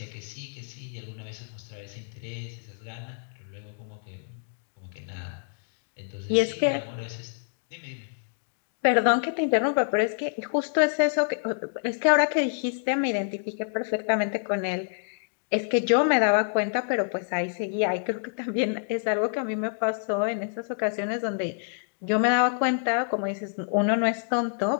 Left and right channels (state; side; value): silent; right; digital silence